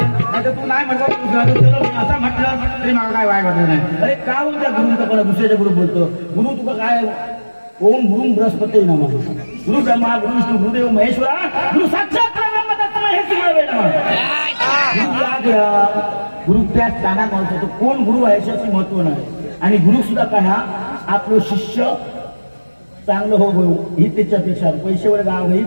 नाही तर तू नाही म्हणतो असं म्हटलं तरी मला काय वाईट वाटलं नाही अरे का बोलतो गुरुचा परत दुसऱ्याच्या गुरु बोलतो गुरु तुका काय ओम गुरु बृहस्पती नमः गुरु ब्रह्मा गुरु विष्णू गुरुदेव महेश्वरा गुरु साक्षात गुरु त्या स्थानात महत्व कोण गुरु आहे याच्याशी महत्व नाही आणि गुरु सुद्धा काय हा आपलं शिष्य चांगलं हो ही त्याच्यापेक्षा पैशावर गाव ही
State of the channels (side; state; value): both; inverted; correlation -1.00